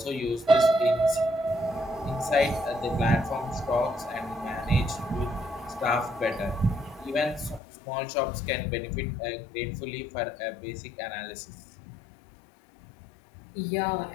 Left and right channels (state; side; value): drops out; right; at 7.6 s